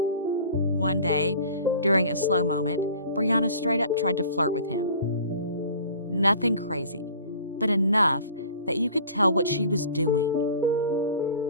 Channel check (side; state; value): both; inverted; correlation -0.45